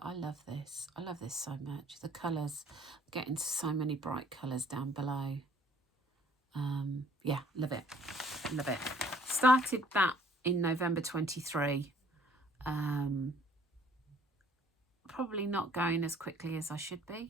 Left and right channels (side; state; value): both; normal; correlation 0.58